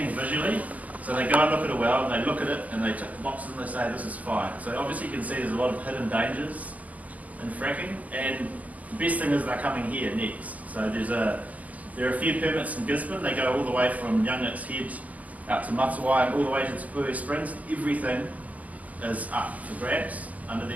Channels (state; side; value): late; left; 0.077 ms